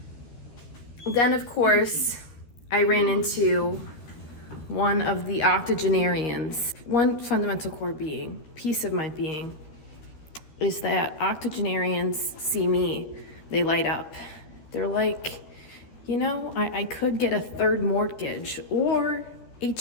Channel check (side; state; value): right; late; 13 ms